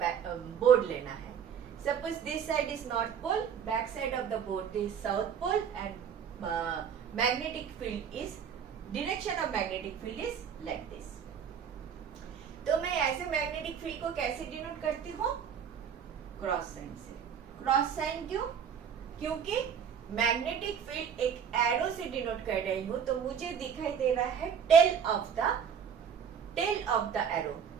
board लेना है. Suppose this side is north pole, back side of the board is south pole, and magnetic field is, direction of magnetic field is like this. तो मैं ऐसे magnetic field को कैसे denote करती हूँ? Cross sign से. क्रॉस साइन क्यों? क्योंकि मैग्नेटिक फील्ड एक एरो से डिनोट कर रही हूं, तो मुझे दिखाई दे रहा है tail of the arrow,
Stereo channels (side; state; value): left; quieter; 7.6 dB